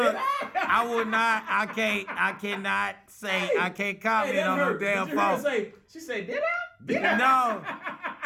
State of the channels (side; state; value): both; identical; correlation 1.00